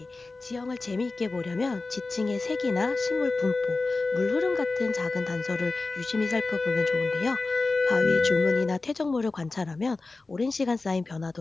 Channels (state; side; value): quieter; right; 3.5 dB